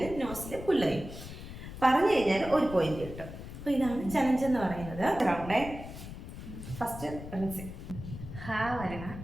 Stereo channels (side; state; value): left; noise; rumble, 11 dB below the sound